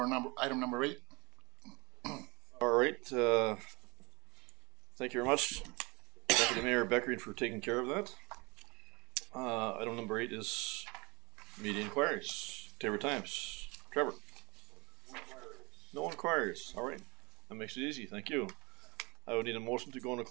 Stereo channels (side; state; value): left; quieter; 26.3 dB